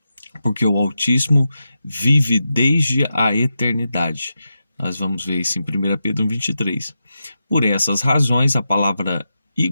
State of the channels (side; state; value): both; inverted; correlation -0.88